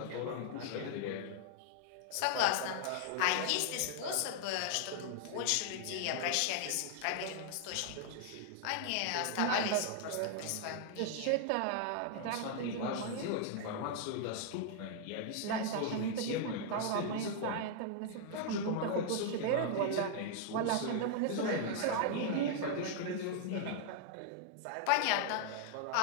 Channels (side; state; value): both; different; correlation -0.01